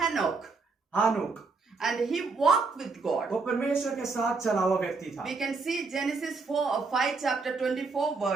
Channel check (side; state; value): left; quieter; 4.2 dB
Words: Enoch. हानोक। And he walked with God. वो परमेश्वर के साथ चला हुआ व्यक्ति था। We can see Genesis 5 chapter 24